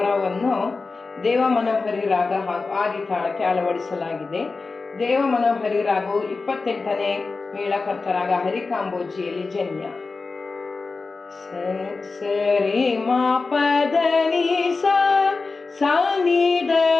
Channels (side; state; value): right; quieter; 4.0 dB